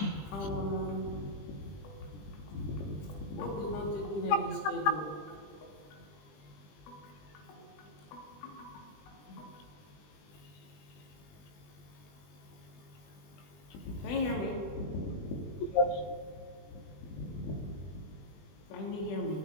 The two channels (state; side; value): late; right; 20 ms